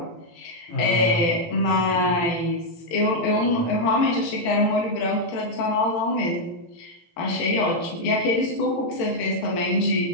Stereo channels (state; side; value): late; right; 18 ms